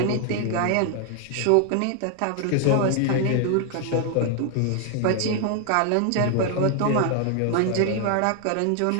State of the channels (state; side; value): different; both; correlation 0.00